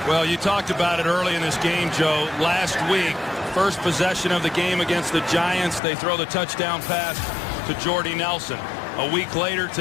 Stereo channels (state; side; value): drops out; right; at 5.8 s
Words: Well, you talked about it early in this game, Joe. Last week, first possession of the game against the Giants, they throw the touchdown pass to Jordy Nelson. A week later